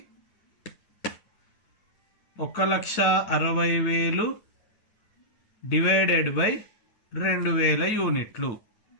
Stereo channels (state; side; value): late; right; 9.3 ms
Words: 1,60,000 డివైడెడ్ బై 2000 యూనిట్లు